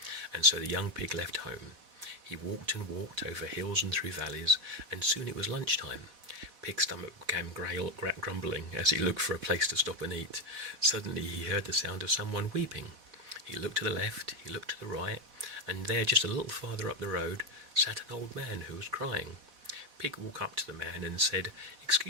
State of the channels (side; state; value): left; late; 4.1 ms